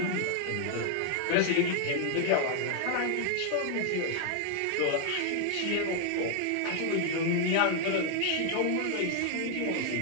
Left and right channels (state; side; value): different; both; correlation 0.00